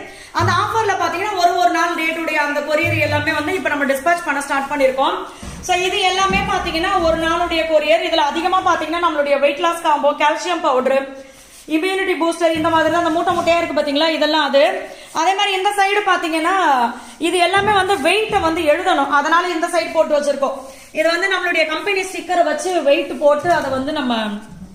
அந்த ஆஃபர்ல பாத்தீங்கன்னா ஒரு நாள் டேட்டுடைய அந்த கொரியர் எல்லாமே வந்து இப்ப நம்ம டிஸ்பேச் பண்ண ஸ்டார்ட் பண்ணிருக்கோம். சோ இது எல்லாமே பாத்தீங்கன்னா ஒரு நாளுடைய கொரியர். இதுல அதிகமா பாத்தீங்கன்னா நம்மளுடைய weight loss combo, calcium powder, immunity booster, இந்த மாதிரி தான் அந்த மூட்டையா இருக்கு பாத்தீங்களா, இதெல்லாம் அது. அதே மாதிரி இந்த சைடு பாத்தீங்கன்னா இது எல்லாமே வந்து வெயிட்ட வந்து எழுதணும், அதனால இந்த சைடு போட்டு வச்சிருக்கோம். இது வந்து நம்மளுடைய கம்பெனி ஸ்டிக்கரை வச்சு வெயிட் போட்டு அதை வந்து நம்ம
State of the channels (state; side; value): identical; both; correlation 1.00